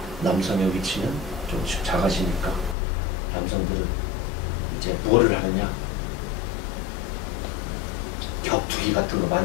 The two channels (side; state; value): right; drops out; at 2.8 s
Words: 남성의 위치는 조금씩 작아지니까 남성들은 이제 뭐를 하느냐? 격투기 같은 거